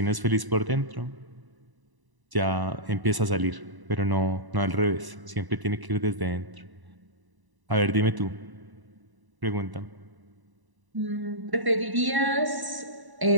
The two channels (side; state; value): left; late; 1.0 ms